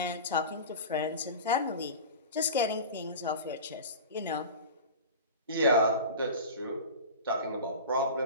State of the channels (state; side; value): inverted; both; correlation -0.32